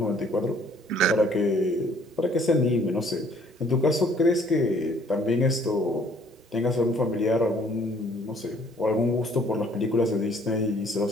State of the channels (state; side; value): normal; both; correlation 0.60